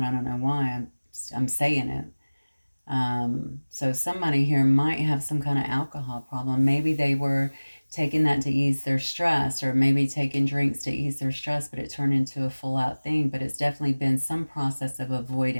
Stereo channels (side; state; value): both; inverted; correlation -1.00